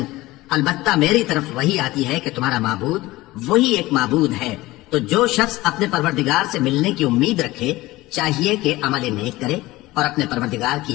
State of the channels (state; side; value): quieter; right; 18.8 dB